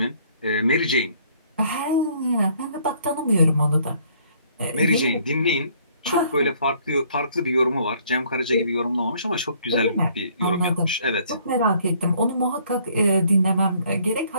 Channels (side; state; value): both; inverted; correlation -0.62